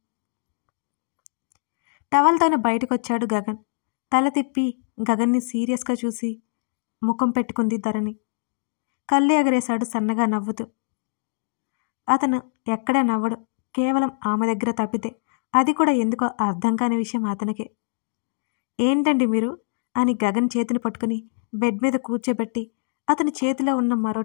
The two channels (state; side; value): silent; right; digital silence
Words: టవల్తోనే బయటకొచ్చాడు గగన్. తల తిప్పి గగన్ని సీరియస్గా చూసి ముఖం పెట్టుకుంది ధరణి. కళ్ళు ఎగరేశాడు సన్నగా నవ్వుతూ. అతను ఎక్కడా నవ్వడు, కేవలం ఆమె దగ్గర తప్పితే, అది కూడా ఎందుకో అర్థం కాని విషయం అతనికే. ఏంటండి మీరు అని గగన్ చేతిని పట్టుకుని బెడ్ మీద కూర్చోబెట్టి అతని చేతిలో ఉన్న మరో